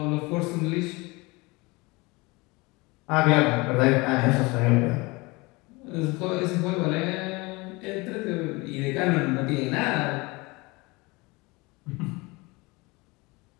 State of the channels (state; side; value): quieter; right; 24.7 dB